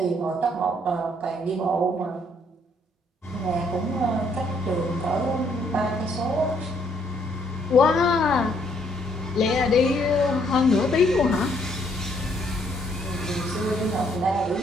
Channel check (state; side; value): normal; both; correlation 0.69